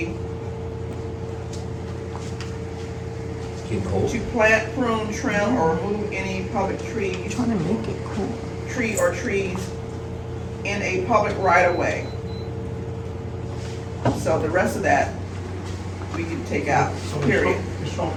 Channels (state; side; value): identical; both; correlation 1.00